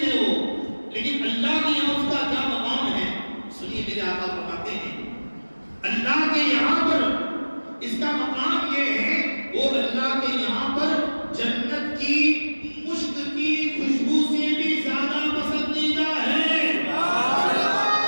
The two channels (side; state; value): both; inverted; correlation -1.00